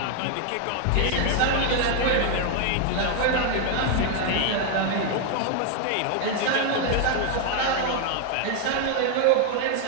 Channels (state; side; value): different; both; correlation 0.00